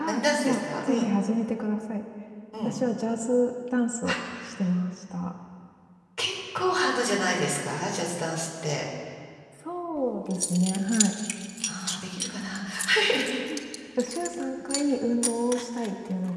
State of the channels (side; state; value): both; identical; correlation 1.00